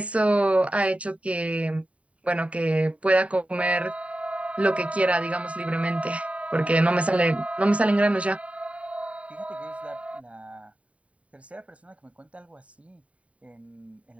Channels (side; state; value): left; late; 0.065 ms